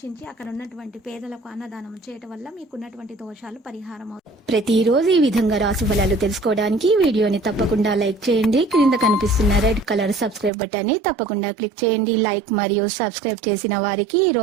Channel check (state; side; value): drops out; left; at 10.5 s